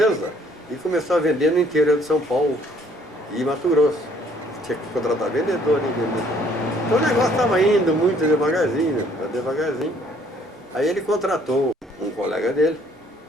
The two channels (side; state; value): both; normal; correlation 0.62